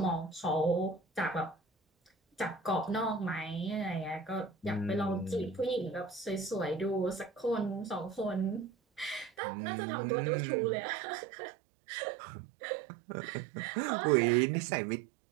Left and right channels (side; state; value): left; drops out; at 9.3 s